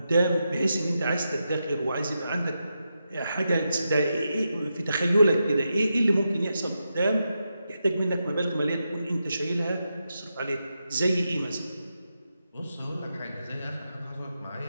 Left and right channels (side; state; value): both; inverted; correlation -0.87